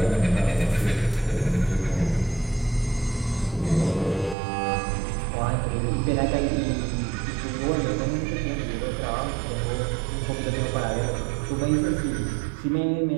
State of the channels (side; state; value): left; drops out; at 4.4 s